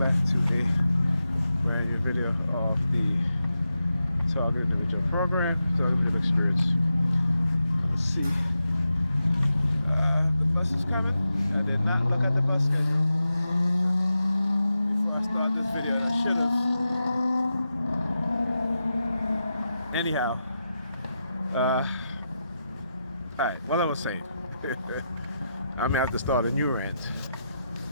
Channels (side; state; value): both; inverted; correlation -0.88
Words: back to a brand new video of the Target Individual Program, Target Individual Experience. Let's see. The bus is coming. I did not look at the bus schedule before I started this video. I should have. Anyhow, alright, what I was saying. I'm gonna have to start a new rant.